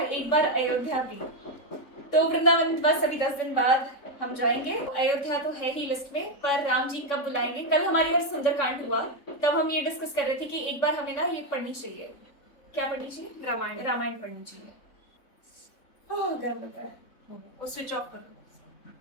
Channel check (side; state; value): right; late; 3.6 ms